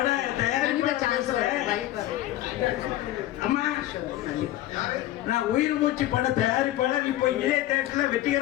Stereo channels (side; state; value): right; quieter; 14.7 dB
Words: அம்மா நான் உயிர் மூச்சு பட தயாரிப்பாளர். இப்போ இதே தேட்டர்ல